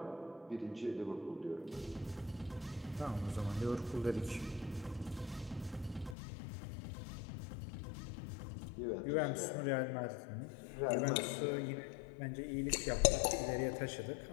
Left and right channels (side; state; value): right; drops out; at 6.2 s